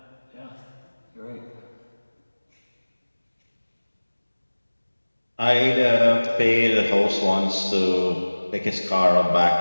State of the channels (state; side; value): inverted; both; correlation -1.00